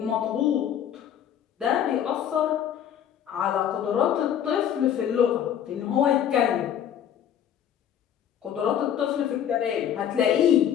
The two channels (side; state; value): right; quieter; 9.6 dB